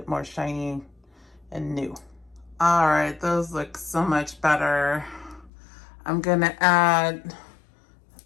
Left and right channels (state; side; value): drops out; right; at 5.5 s